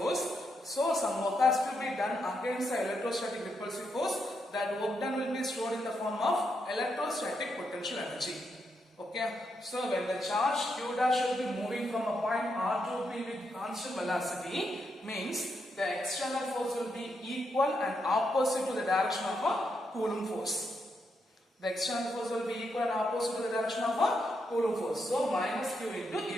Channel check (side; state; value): both; normal; correlation 0.81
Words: So some work has to be done against the electrostatic repulsive force. That work done will be stored in the form of electrostatic potential energy. Okay, so when the charge Q dash will be moving from a point R to P with constant velocity, means the external force will be equal and opposite to the direction of a Coulomb force. The external force will be equal and opposite to the direction of a Coulomb force. So minus Q into